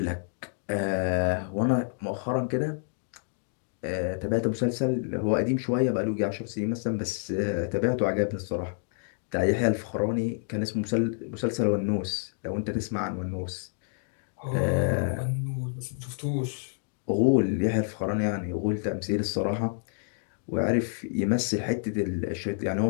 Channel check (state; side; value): silent; right; 59 dB below the other